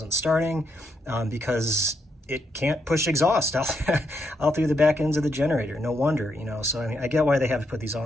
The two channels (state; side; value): normal; both; correlation 0.79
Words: starting because it can't push exhaust out through the back ends of the generator. No wonder, So I mean, I get why they have to put these